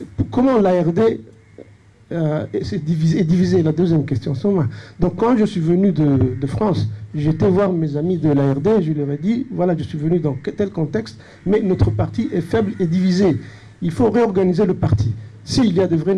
comment l'ARD est divisé? La deuxième question. Donc quand je suis venu de France, j'étais voir mes amis de l'ARD, je leur ai dit voilà, je suis venu dans tel contexte, mais notre parti est faible et divisé. Il faut réorganiser le parti. S'il y a de vraies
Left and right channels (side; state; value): both; identical; correlation 1.00